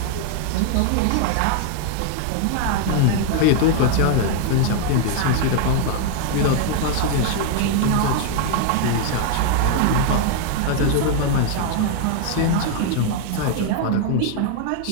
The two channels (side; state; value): both; different; correlation 0.00